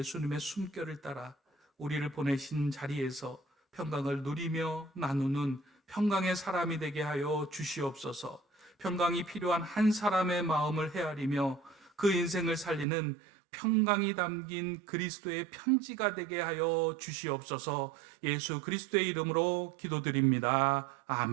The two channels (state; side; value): drops out; left; at 12.9 s